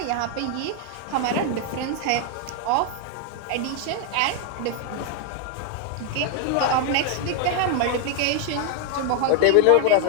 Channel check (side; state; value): both; different; correlation 0.00